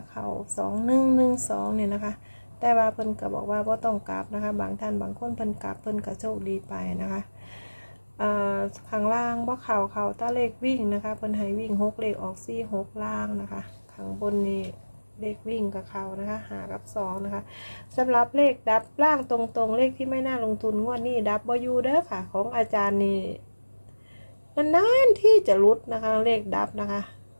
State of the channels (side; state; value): both; inverted; correlation -1.00